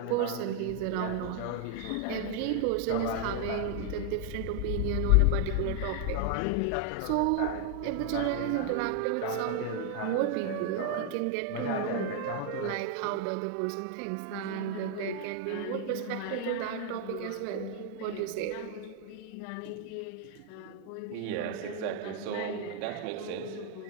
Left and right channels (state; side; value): different; both; correlation 0.00